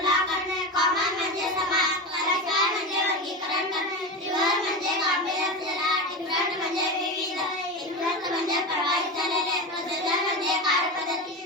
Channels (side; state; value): both; normal; correlation 0.21